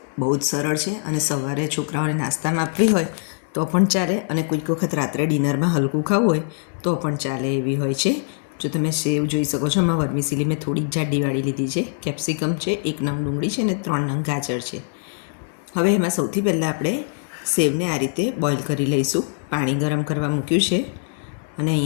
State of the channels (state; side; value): silent; right; 64 dB below the other